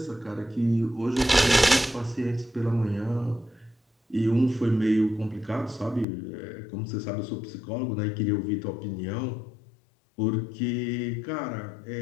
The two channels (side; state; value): right; drops out; at 6.1 s